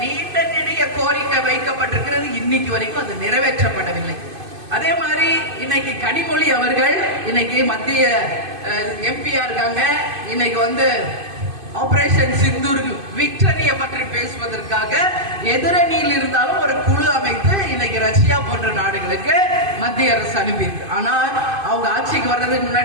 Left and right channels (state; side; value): late; left; 2.5 ms